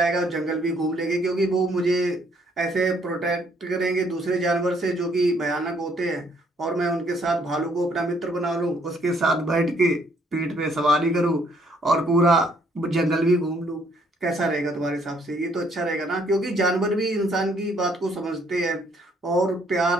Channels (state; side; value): normal; both; correlation 0.66